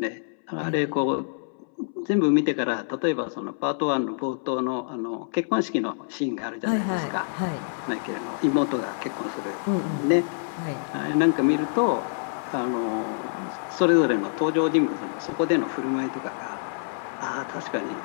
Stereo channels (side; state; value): right; silent; 61 dB below the other